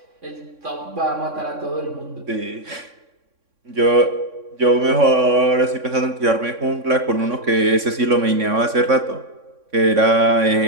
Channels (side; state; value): left; late; 3.6 ms